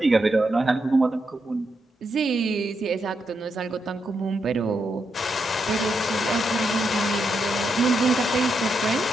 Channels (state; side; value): normal; both; correlation 0.82